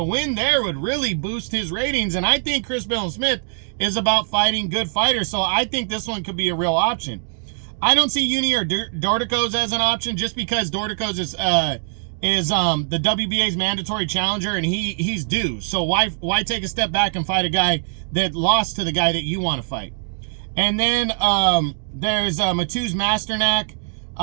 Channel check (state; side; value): silent; left; digital silence